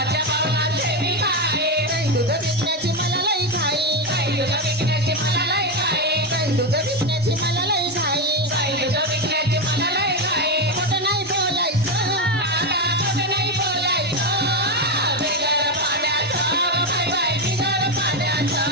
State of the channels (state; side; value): normal; both; correlation 0.11